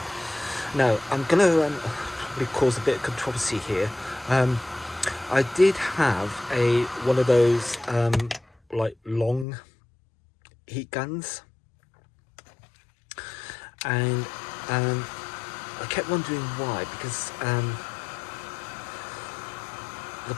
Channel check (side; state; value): right; drops out; at 9.5 s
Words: Now I'm going to cause a bit of controversy here. I did have one of those like long heat guns, and I kept wondering why, because the